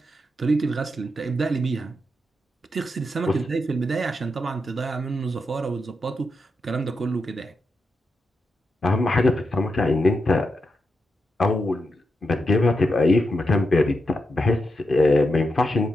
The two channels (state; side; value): normal; both; correlation 0.85